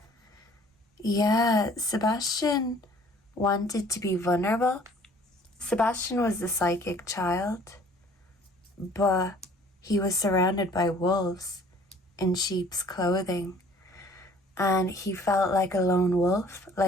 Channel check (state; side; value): normal; both; correlation 0.54